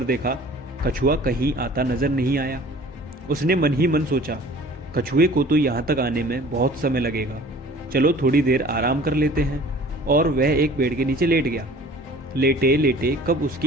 देखा। कछुआ कहीं आता नजर नहीं आया। उसने मन ही मन सोचा, कछुए को तो यहाँ तक आने में बहुत समय लगेगा, चलो थोड़ी देर आराम कर लेते हैं। और वह एक पेड़ के नीचे लेट गया। लेटे लेटे कब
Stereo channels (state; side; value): normal; both; correlation 0.48